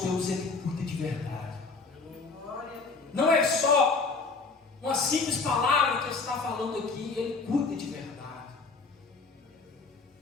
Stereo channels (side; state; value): right; quieter; 4.3 dB